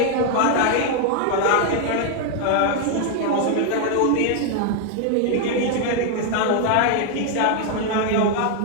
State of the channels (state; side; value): different; both; correlation 0.00